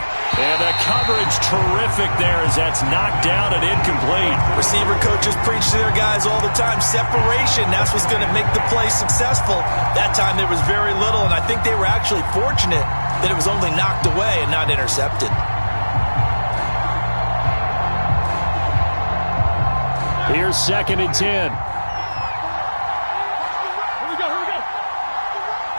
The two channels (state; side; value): inverted; both; correlation -1.00